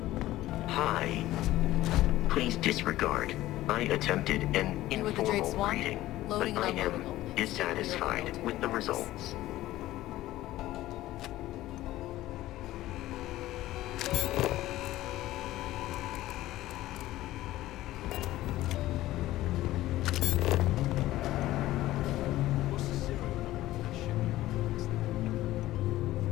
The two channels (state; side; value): quieter; right; 15.7 dB